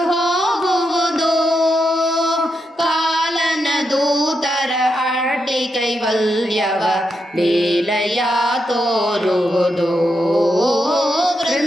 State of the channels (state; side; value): normal; both; correlation 0.84